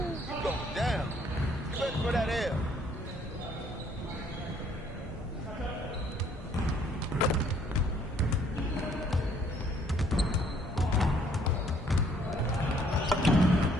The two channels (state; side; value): normal; both; correlation 0.63